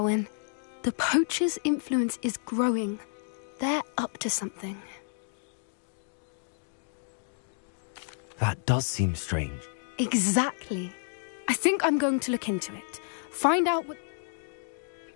The poachers' influence is growing. They're up to something. That does seem strange. Exactly. I think I'm going to look into it. Find out what...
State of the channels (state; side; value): silent; right; digital silence